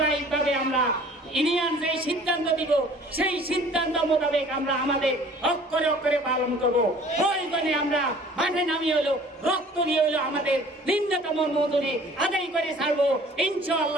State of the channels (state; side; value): normal; both; correlation 0.50